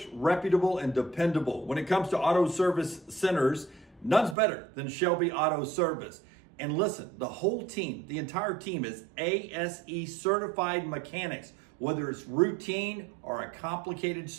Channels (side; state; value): left; drops out; at 4.4 s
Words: reputable, and dependable. When it comes to auto service centers, none's better than Shelby Auto Service. And listen, the whole team, the entire team is ASE certified mechanics. Whether it's routine or a complicated